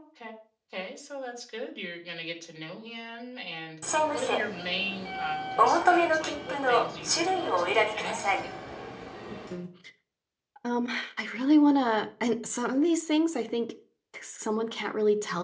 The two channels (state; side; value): identical; both; correlation 1.00